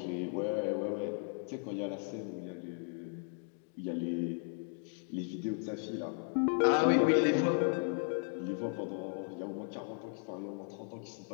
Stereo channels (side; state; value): right; silent; 54 dB below the other